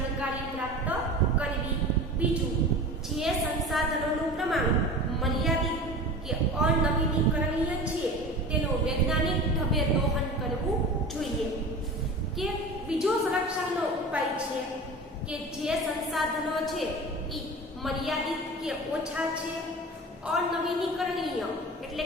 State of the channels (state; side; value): normal; both; correlation 0.34